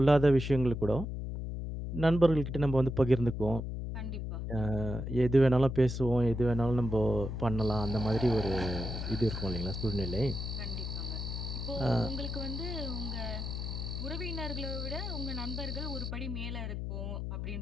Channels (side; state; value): left; noise; hum, 4 dB below the sound